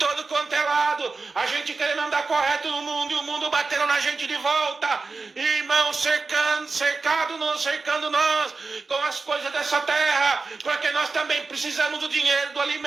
quanto é lado, a gente querendo andar correto no mundo, e o mundo batendo na gente de volta, irmão, cercando nós com as coisas dessa terra, porque nós também precisamos do dinheiro, do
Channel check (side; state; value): left; quieter; 4.1 dB